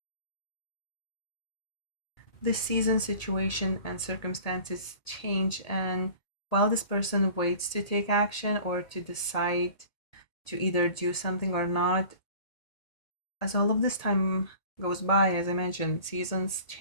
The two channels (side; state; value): right; late; 1.8 ms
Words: The season, situation, and circumstances change, and while this person waits to take action or to decide to either do something or not, as all of this time goes by, as I mentioned, seasons